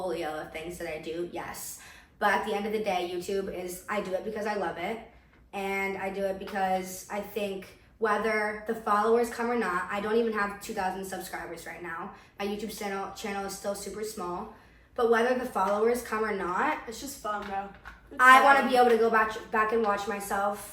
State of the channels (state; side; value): identical; both; correlation 1.00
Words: of things that I do, yes. But at the end of the day, YouTube is, I do it because I love it, and I do it because I think whether the followers come or not, I don't even have 2,000 subscribers right now. My YouTube channel is still super small, but whether the followers come or not, It's just fun, bro. I want to be able to go back and watch